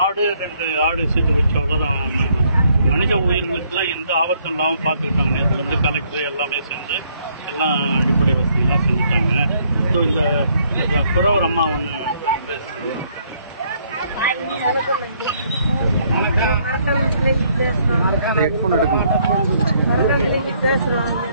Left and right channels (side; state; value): both; inverted; correlation -0.68